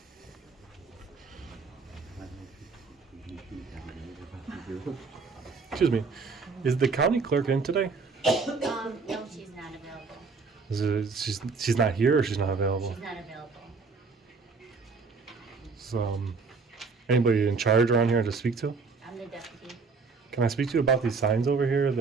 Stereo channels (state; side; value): quieter; left; 4.6 dB